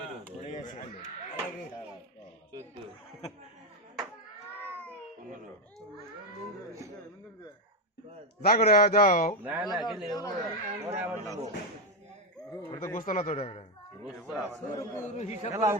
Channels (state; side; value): normal; both; correlation 0.06